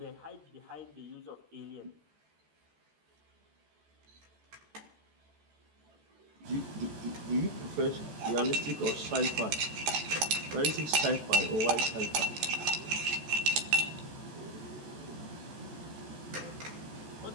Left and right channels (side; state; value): left; late; 14 ms